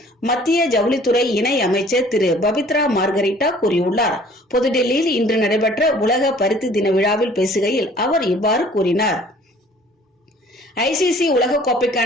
மத்திய ஜவுளித்துறை இணை அமைச்சர் திரு பபித்ரா மார்கரிட்டா கூறியுள்ளார். புதுடெல்லியில் இன்று நடைபெற்ற உலக பருத்தி தின விழாவில் பேசுகையில் அவர் இவ்வாறு கூறினார். ஐசிசி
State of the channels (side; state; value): both; normal; correlation 0.53